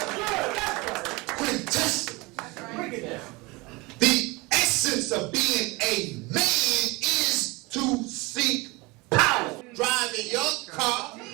Quintessence. The essence of being a man is to seek power. Driving your car,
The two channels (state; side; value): quieter; left; 24.4 dB